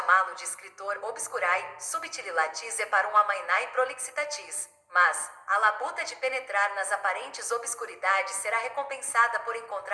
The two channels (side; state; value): both; identical; correlation 1.00